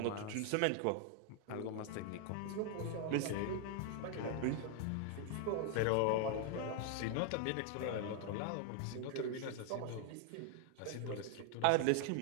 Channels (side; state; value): both; different; correlation 0.00